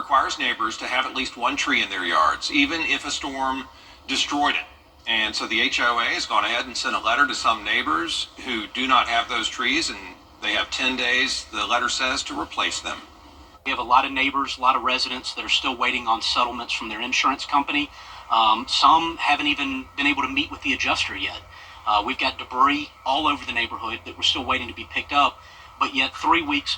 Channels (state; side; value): identical; both; correlation 1.00